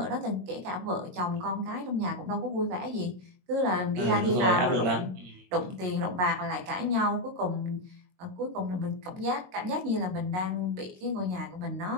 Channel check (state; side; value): late; left; 22 ms